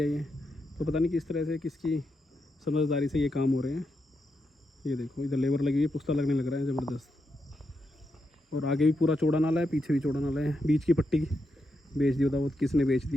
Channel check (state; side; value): normal; both; correlation 0.84